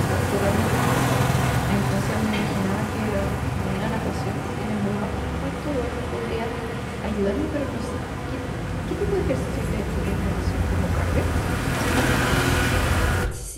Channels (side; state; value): both; identical; correlation 1.00